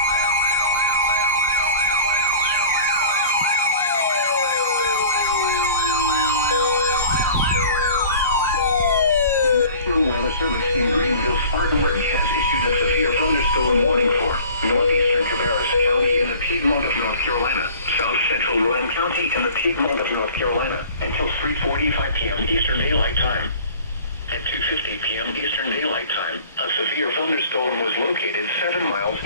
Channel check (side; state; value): both; inverted; correlation -0.45